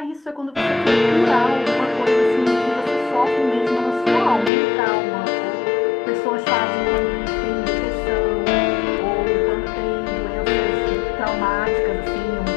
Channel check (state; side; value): drops out; right; at 4.5 s